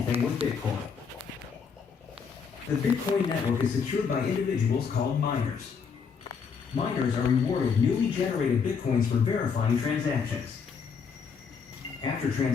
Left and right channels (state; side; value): quieter; right; 6.1 dB